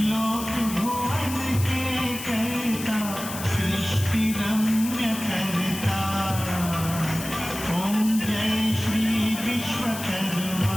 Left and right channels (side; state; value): left; noise; hiss, 9 dB below the sound